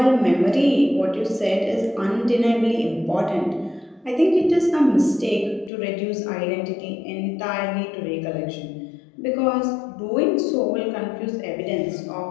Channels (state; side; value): drops out; right; at 5.7 s